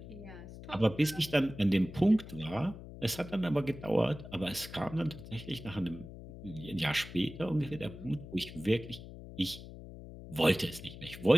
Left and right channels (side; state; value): left; noise; hum, 14 dB below the sound